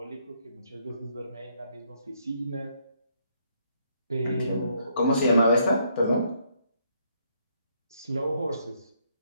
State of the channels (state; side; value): inverted; both; correlation -0.71